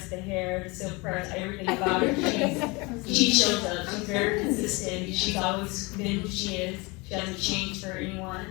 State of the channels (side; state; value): right; quieter; 26.1 dB